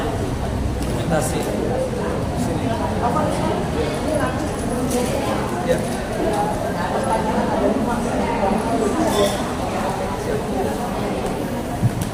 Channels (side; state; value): both; identical; correlation 1.00